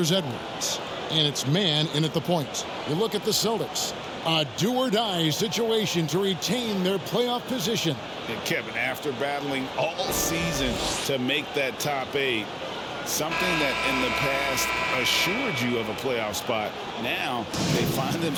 Edwards. And it's man in at the point. You look at the Celtics. A do-or-die situation to retain their playoff position. And Kevin, after battling all season to make that top 8, something that in the past assured you of a playoff spot, now they find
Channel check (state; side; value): identical; both; correlation 1.00